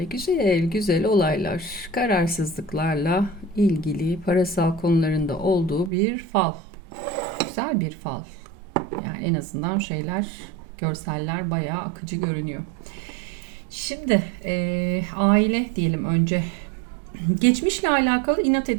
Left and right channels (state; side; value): drops out; left; at 5.9 s